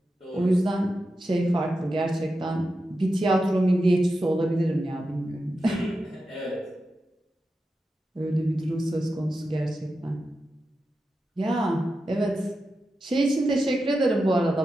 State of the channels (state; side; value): normal; both; correlation 0.90